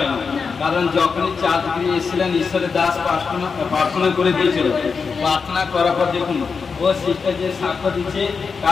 কারণ যখনই 4 ডিগ্রি এসেছিলেন ঈশ্বরের দাস প্রার্থনা করে দিয়েছিল প্রার্থনা করার পর দেখুন ও সিস্টার যে সাক্ষ্য দিচ্ছে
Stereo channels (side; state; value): right; quieter; 5.3 dB